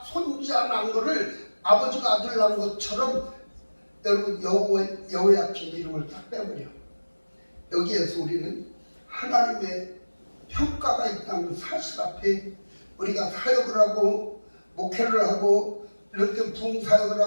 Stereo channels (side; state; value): both; inverted; correlation -1.00